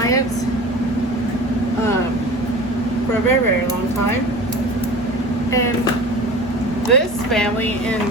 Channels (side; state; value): right; noise; rumble, 26 dB below the sound